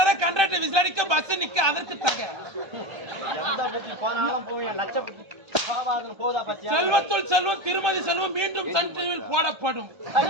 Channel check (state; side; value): late; left; 1.2 ms